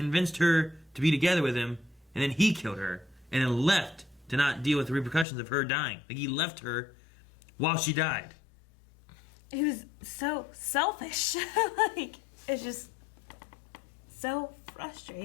her to be together with him, and then he killed her, and then left to not deal with the repercussions of her dying. Like, he left her while she died. He was so selfish. Like, it's just so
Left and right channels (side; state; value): right; drops out; at 5.2 s